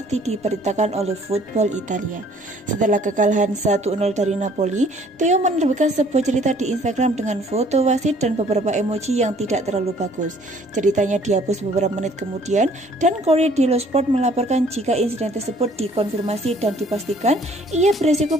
diberitakan oleh Football Italia. Setelah kekalahan 1-0 dari Napoli, Theo menerbitkan sebuah cerita di Instagram dengan foto wasit dan beberapa emoji yang tidak terlalu bagus. Ceritanya dihapus beberapa menit kemudian dan Corriere dello Sport melaporkan jika insiden tersebut dikonfirmasi dan dipastikan ia beresiko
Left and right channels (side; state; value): both; normal; correlation 0.58